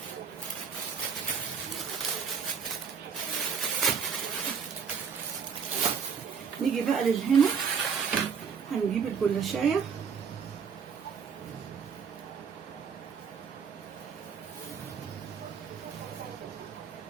نيجي بقى للهنا، هنجيب الجلاشايه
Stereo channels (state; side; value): quieter; left; 6.4 dB